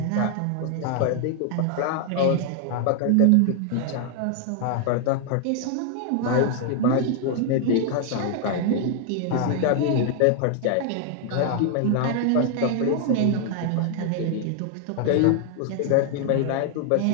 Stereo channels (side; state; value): both; different; correlation 0.00